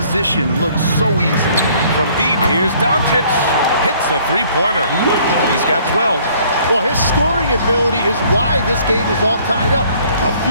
look so easy. From deep, here's Doncic. Hits a three-pointer. He's got 12. Well, his scoring ability is why this game is all tied up. A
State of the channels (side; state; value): both; inverted; correlation -0.59